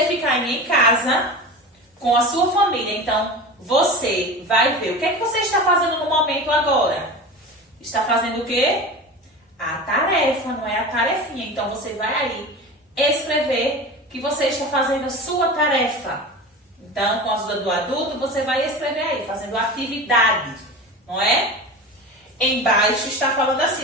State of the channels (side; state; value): both; normal; correlation 0.31